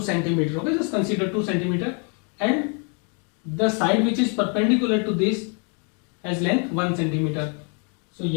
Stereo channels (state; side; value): quieter; right; 38.0 dB